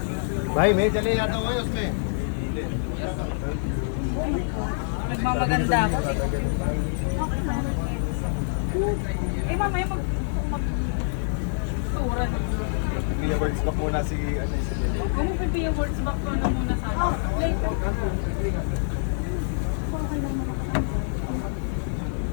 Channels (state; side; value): silent; right; digital silence